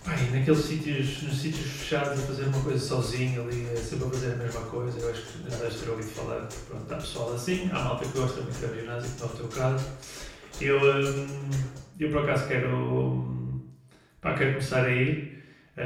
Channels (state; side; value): identical; both; correlation 1.00